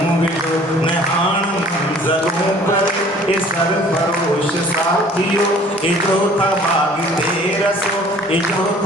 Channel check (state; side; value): normal; both; correlation 0.52